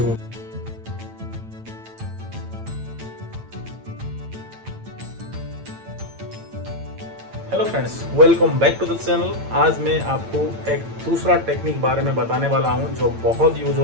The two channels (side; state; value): left; late; 8.9 ms